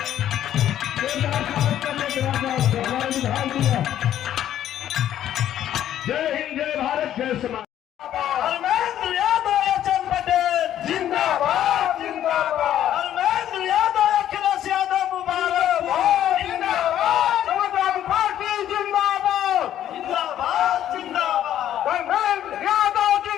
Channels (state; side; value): quieter; right; 11.3 dB